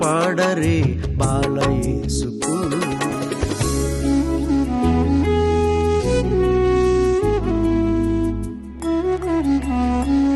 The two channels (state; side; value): identical; both; correlation 1.00